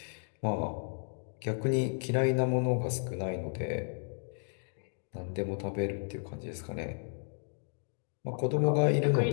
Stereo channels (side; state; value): right; silent; digital silence